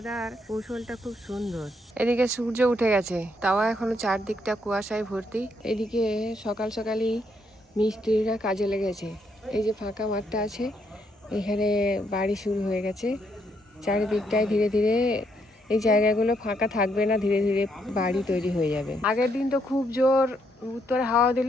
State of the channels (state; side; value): normal; both; correlation 0.74